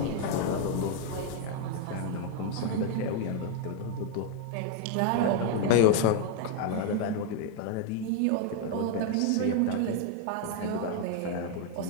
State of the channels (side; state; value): both; different; correlation 0.01